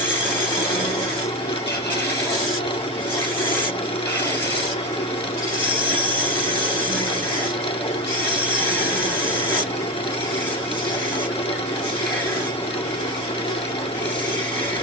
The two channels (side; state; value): both; normal; correlation 0.17